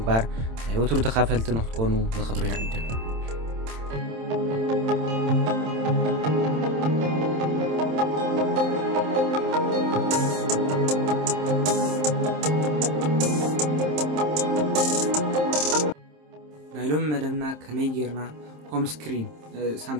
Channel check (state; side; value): late; left; 27 ms